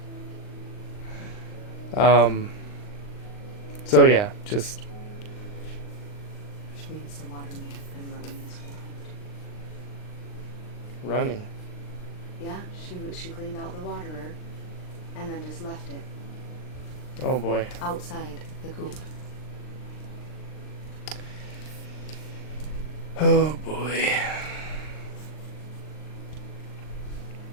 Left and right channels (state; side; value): late; right; 39 ms